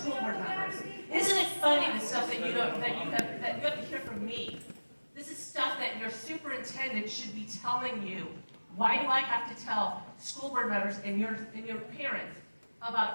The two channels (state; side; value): inverted; both; correlation -1.00